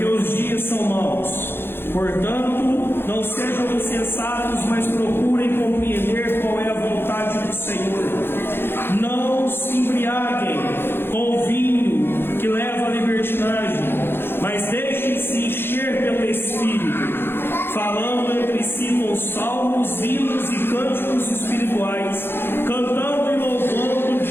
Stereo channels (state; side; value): late; right; 0.11 ms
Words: os dias são maus. Portanto, não sejam insensatos, mas procurem compreender qual é a vontade do Senhor. Não se embriaguem com o vinho que leva à libertinagem, mas deixem-se encher pelo Espírito, falando entre si com salmos, hinos e cânticos espirituais, cantando e louvando